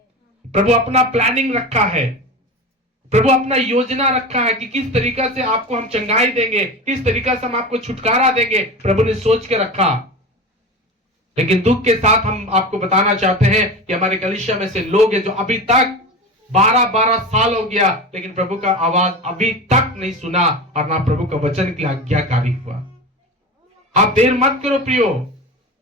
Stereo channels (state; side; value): normal; both; correlation 0.28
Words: प्रभु अपना प्लानिंग रखा है, प्रभु अपना योजना रखा है कि किस तरीका से आपको हम चंगाई देंगे, किस तरीका से हम आपको छुटकारा देंगे, प्रभु ने सोच के रखा। लेकिन दुख के साथ हम आपको बताना चाहते हैं कि हमारे कलीसिया में से लोग हैं जो अभी तक 12 साल हो गया, लेकिन प्रभु का आवाज अभी तक नहीं सुना और ना प्रभु का वचन के लिए आज्ञाकारी हुआ। आप देर मत करो प्रियो,